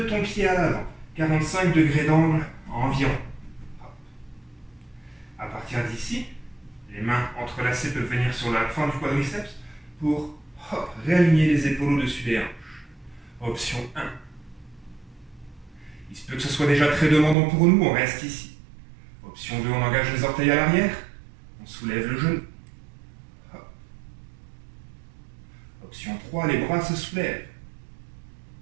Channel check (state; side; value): drops out; left; at 17.4 s